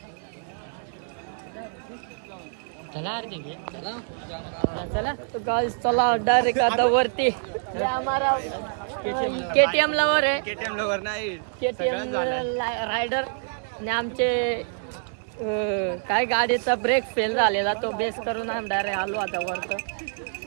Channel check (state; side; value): silent; left; 61 dB below the other